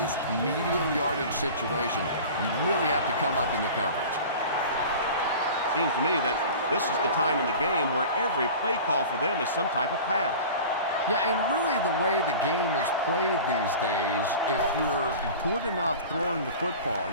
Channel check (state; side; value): inverted; both; correlation -0.37